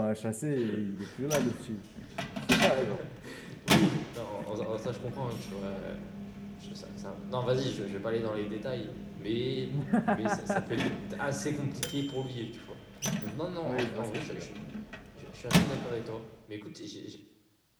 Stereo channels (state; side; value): identical; both; correlation 1.00